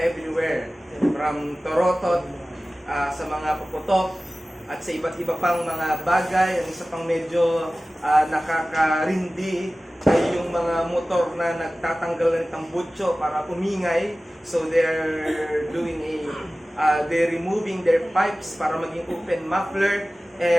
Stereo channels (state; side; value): normal; both; correlation 0.97